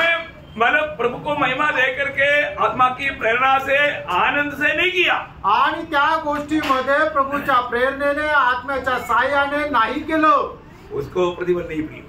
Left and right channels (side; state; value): both; identical; correlation 1.00